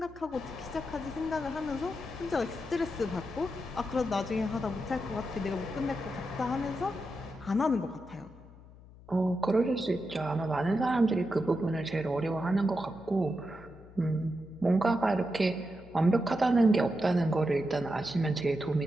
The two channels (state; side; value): noise; left; hum, 21 dB below the sound